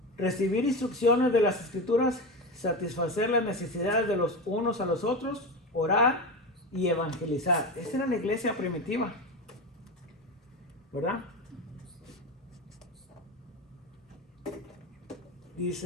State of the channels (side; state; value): both; normal; correlation 0.21